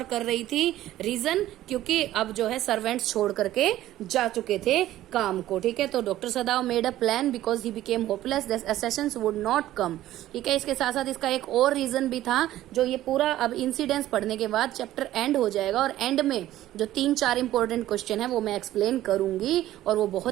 कर रही थी. रीजन, क्योंकि अब जो है सर्वेंट्स छोड़ करके जा चुके थे काम को. ठीक है, तो doctor Sadao made a plan because he became hopeless that Assassin's would not come. ठीक है, इसके साथ साथ इसका एक और रीजन भी था जो ये पूरा अब इंसिडेंट्स पढ़ने के बाद चैप्टर एंड हो जाएगा और एंड में जो 3-4 इंपॉर्टेंट क्वेश्चन है वो मैं एक्सप्लेन करूंगी और वो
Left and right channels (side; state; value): left; quieter; 14.1 dB